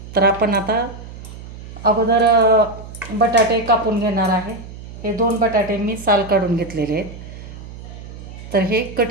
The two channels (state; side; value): noise; right; hum, 14 dB below the sound